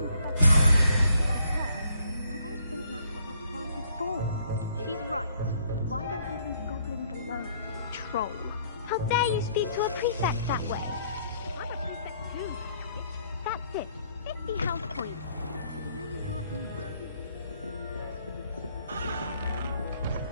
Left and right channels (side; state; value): both; inverted; correlation -0.66